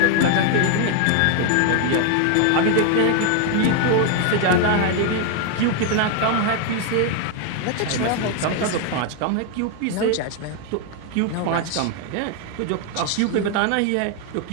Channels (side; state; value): both; different; correlation 0.01